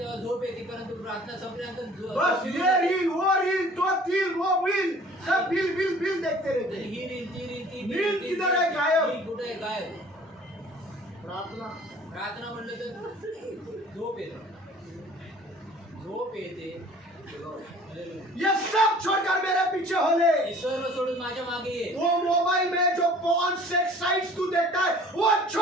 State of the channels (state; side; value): normal; both; correlation 0.50